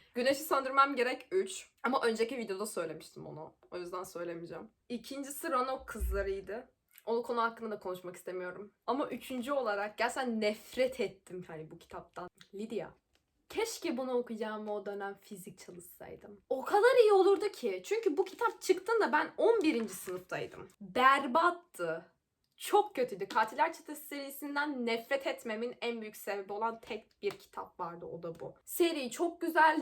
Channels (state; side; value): identical; both; correlation 1.00